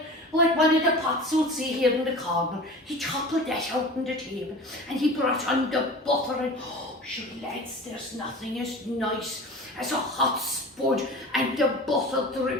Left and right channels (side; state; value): both; normal; correlation 0.36